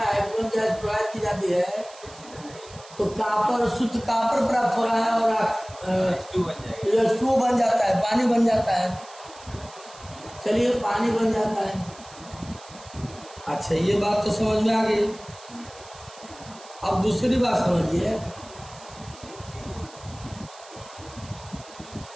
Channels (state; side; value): noise; right; hiss, 20 dB below the sound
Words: हाइड्रोजन गैस प्रवाहित की जाती है तो कॉपर, शुद्ध कॉपर प्राप्त हो रहा है और H2O बन जाता है, पानी बन जाता है। चलिए, पानी बन जाता है। अच्छा, ये बात तो समझ में आ गई। अब दूसरी बात समझिए।